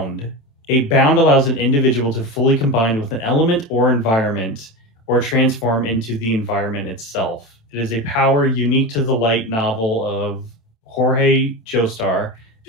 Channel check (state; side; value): late; right; 27 ms